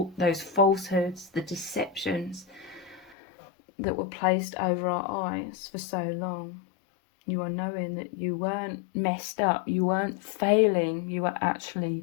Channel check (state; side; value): drops out; right; at 3.2 s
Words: those falsehoods, the deceptions that were placed over our eyes for so long. You are knowing that you weren't messed up, you weren't failing, you were